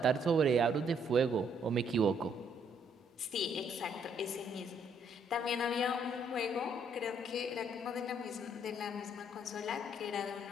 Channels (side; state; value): both; normal; correlation 0.69